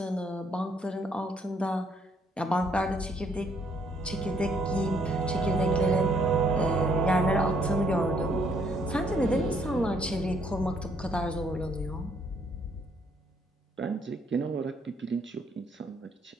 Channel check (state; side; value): normal; both; correlation 0.68